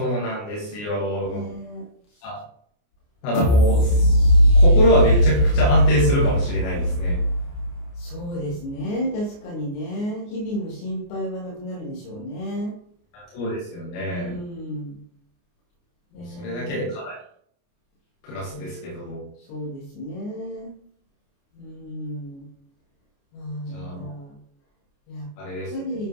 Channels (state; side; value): late; right; 29 ms